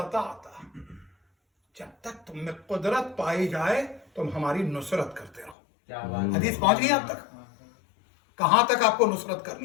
جب تک تم میں قدرت پائی جائے تم ہماری نصرت کرتے رہو. کیا بات. حدیث پہنچ گئی آپ تک؟ کہاں تک آپ کو نصرت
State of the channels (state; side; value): drops out; right; at 5.6 s